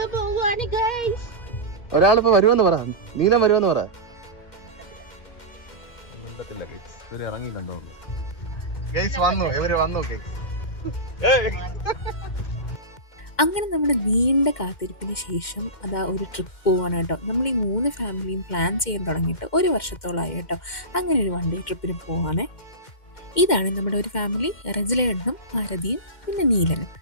പോവാണ് ഗൈസ്. ഒരാളിപ്പോ വരുമെന്ന് പറ. നീലം വരുമെന്ന് പറ. ഇവര് ഇറങ്ങിയിട്ടുണ്ടോ? ഇവര് വന്നു. അങ്ങനെ നമ്മുടെ നീണ്ട കാത്തിരിപ്പിന് ശേഷം അതാ ഒരു ട്രിപ്പ് പോവാണ് കേട്ടോ. നമ്മൾ ഈ 3 ഫാമിലിയും പ്ലാൻ ചെയ്യാൻ തുടങ്ങിയിട്ട് 1 വർഷത്തോളമായി കേട്ടോ. അങ്ങനെ ഒരു 1 ഡേ ട്രിപ്പിന് പോവാണേ. ഇതാണ് നമ്മുടെ ഒരു ഫാമിലി. റജിലേട്ടനും ഭാരതിയും പിന്നെ നീലനും.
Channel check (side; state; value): right; late; 2.1 ms